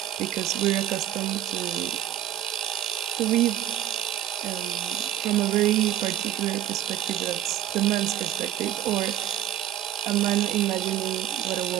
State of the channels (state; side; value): quieter; left; 11.8 dB